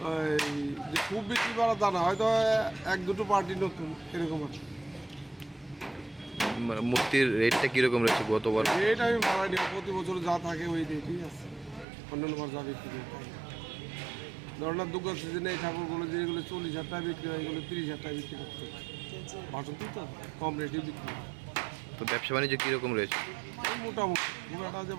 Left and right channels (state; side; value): drops out; left; at 11.9 s